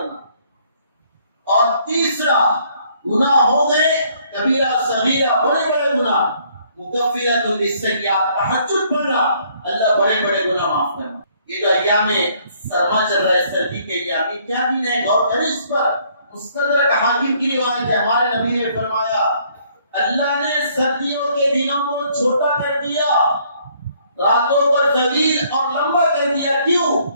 اور تیسرا گناہ ہو گئے کبیرہ صغیرہ بڑے گناہ, مکفرۃ للسیئات, تہجد پڑھنا اللہ بڑے گناہ معاف کرنا. یہ جو ایام سرما چل رہا ہے, سردی کے ایام, یہ کیا دن ہے؟ غور کریں اس پر. مستدرک حاکم کی روایت ہے, ہمارے نبی نے فرمایا اللہ نے سردیوں کے دنوں کو چھوٹا کر دیا, راتوں کو طویل اور لمبا کر دیا. کیوں؟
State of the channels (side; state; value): both; inverted; correlation -0.64